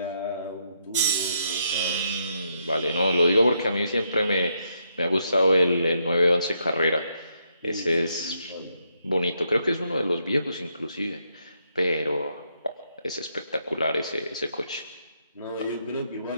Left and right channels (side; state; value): both; inverted; correlation -0.77